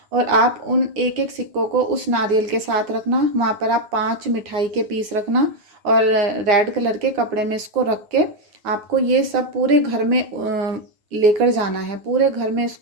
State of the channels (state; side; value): late; left; 9.4 ms